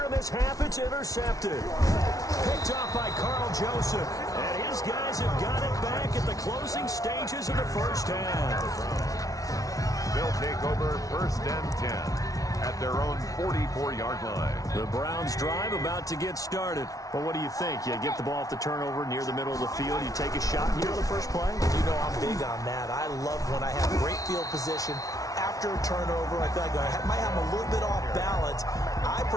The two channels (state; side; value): late; right; 0.17 ms